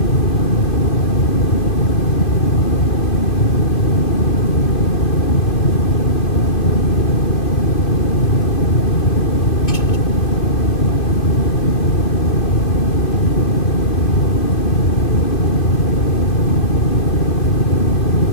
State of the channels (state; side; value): late; right; 2.6 ms